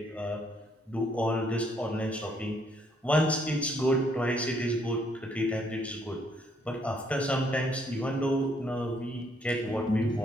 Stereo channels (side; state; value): both; normal; correlation 0.69